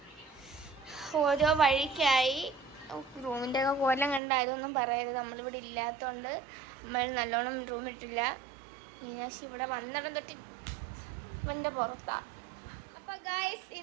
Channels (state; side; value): drops out; left; at 4.2 s